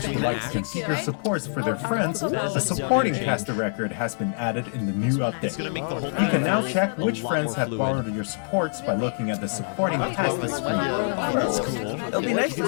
who like to configure supports for their friends, a supporting caster record has been added in the new update. You can now check which friends have borrowed your supports by looking at the supporting caster screen. It'll be nice to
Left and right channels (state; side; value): silent; right; digital silence